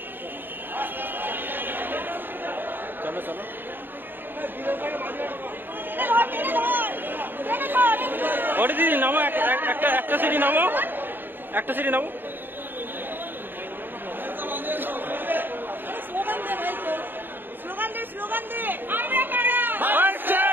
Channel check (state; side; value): late; left; 0.094 ms